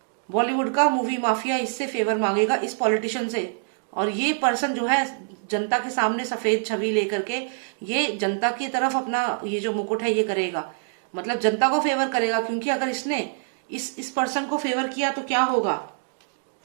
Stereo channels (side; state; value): left; silent; digital silence